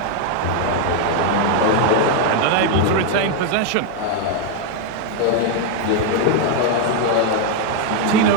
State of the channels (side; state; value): both; different; correlation 0.00